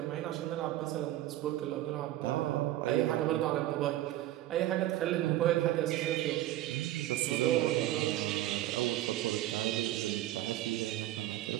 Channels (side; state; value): left; quieter; 14.6 dB